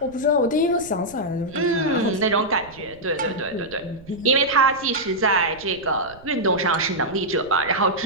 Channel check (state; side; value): noise; right; rumble, 22 dB below the sound